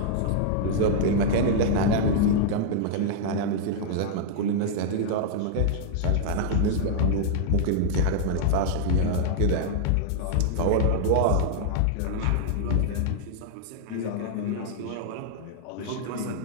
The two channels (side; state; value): both; different; correlation -0.01